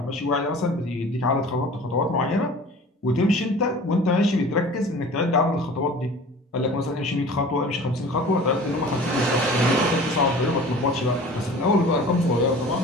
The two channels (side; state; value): both; normal; correlation 0.42